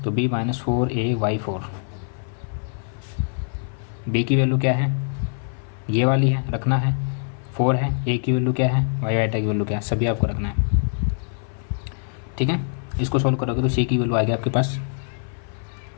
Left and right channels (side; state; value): right; silent; 56 dB below the other